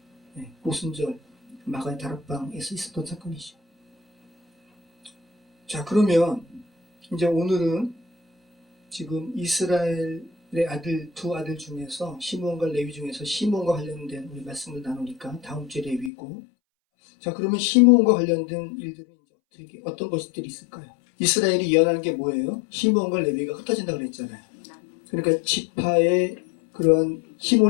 오순절 마가의 다락방에서 있었던 사건이죠. 자, 그러면 이제 오늘은 지금 이스라엘의 두 아들 중에서 시므온과 레위 중에서 시므온과 관련된 우리 말씀을 나누니까 다음 주에 레위고. 자, 그러면 시므온과 관련된 일들은 이제 어떤 것들이 있을까요? 이스라엘이 예언하는 게 뭐예요? 시므온과 레위가 흩어진다고 그랬잖아요. 그러니까 지파의 그런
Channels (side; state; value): right; drops out; at 16.1 s